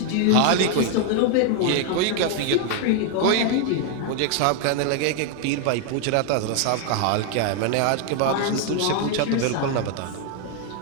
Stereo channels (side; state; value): both; different; correlation 0.00